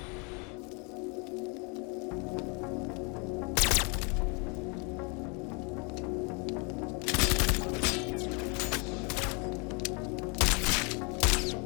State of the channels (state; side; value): quieter; right; 33.0 dB